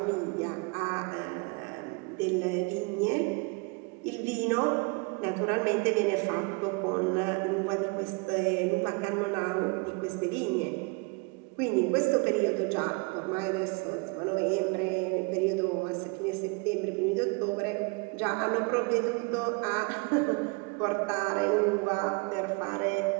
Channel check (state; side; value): quieter; left; 31.3 dB